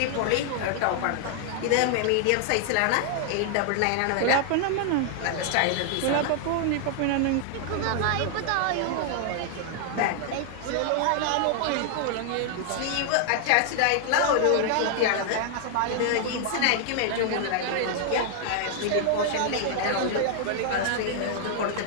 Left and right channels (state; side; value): different; both; correlation 0.00